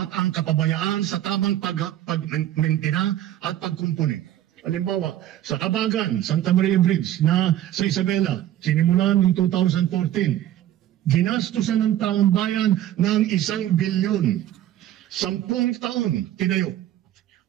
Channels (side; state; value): left; quieter; 12.5 dB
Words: ang kapabayaan sa tamang pagmentina at pagkumpuni. Halimbawa, sa Kabagan, Santa Maria Bridge na sa Isabela, sinimulan noong 2014, ginastusan ng taong bayan ng 1 bilyon. 10 taon tinayo.